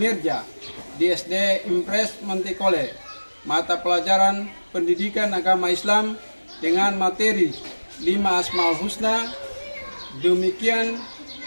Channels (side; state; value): both; inverted; correlation -1.00